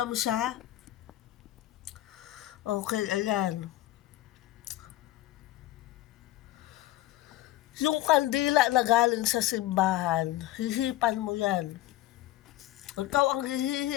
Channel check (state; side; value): quieter; right; 15.1 dB